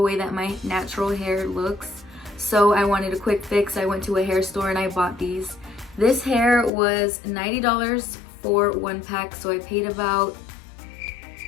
way that my natural hair looks, so I wanted a quick fix. I went to a hair store and I bought these. This hair was $90 for 1 pack, so I paid about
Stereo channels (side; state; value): right; drops out; at 6.7 s